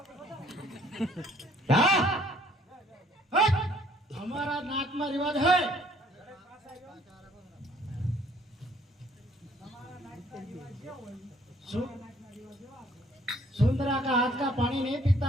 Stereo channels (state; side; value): normal; both; correlation 0.61